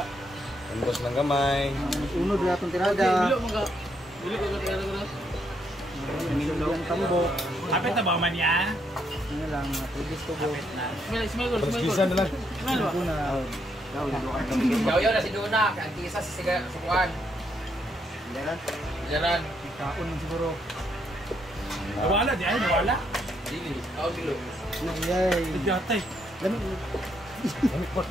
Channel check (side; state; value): both; normal; correlation 0.75